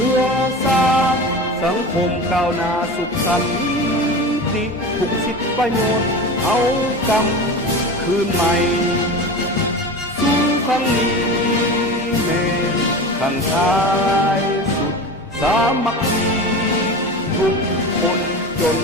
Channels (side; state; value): both; normal; correlation 0.30